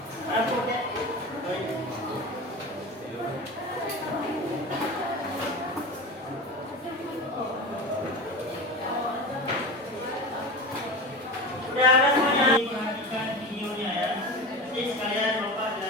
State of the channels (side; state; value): both; normal; correlation 0.28